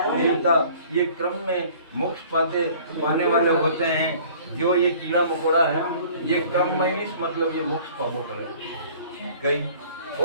ये क्रम में मोक्ष पाने वाले होते हैं। जो ये कीड़ा मकोड़ा है ये क्रम में मतलब ये मोक्ष पापो करे गई।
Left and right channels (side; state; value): both; inverted; correlation -0.51